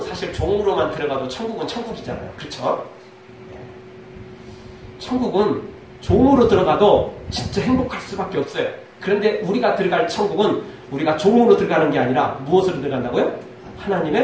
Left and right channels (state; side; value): identical; both; correlation 1.00